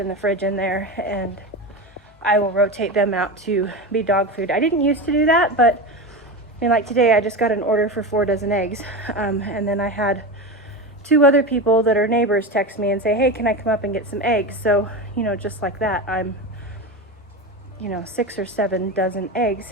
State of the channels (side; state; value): both; normal; correlation 0.22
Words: the fridge in there, and I will rotate them out to be dog food. I didn't used to do that, but I mean, like today I just got an order for 4 dozen eggs, and then I had 2 other people that are neighbors text me and say, hey, can I come up and get some eggs? So, you know, just like that, I'm, you know, 6 or 7 dozen eggs